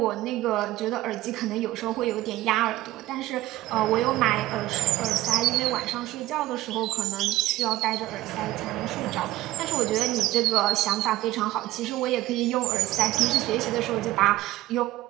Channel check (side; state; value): left; quieter; 16.3 dB